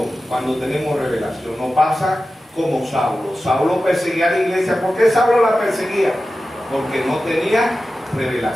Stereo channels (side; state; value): both; normal; correlation 0.94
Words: Cuando tenemos revelación. No pasa como Saulo. Saulo perseguía a la iglesia. ¿Por qué Saulo la perseguía? Porque no tenía